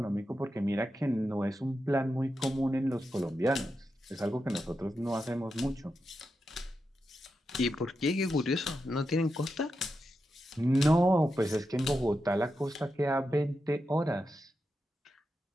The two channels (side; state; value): both; normal; correlation 0.88